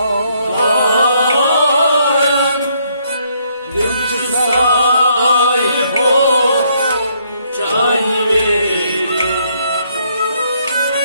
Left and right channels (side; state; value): both; inverted; correlation -0.70